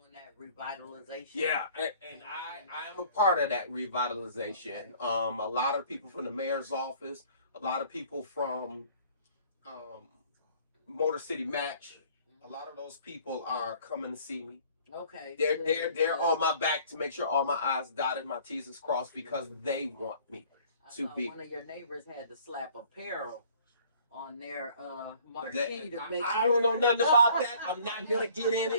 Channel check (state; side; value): inverted; both; correlation -0.54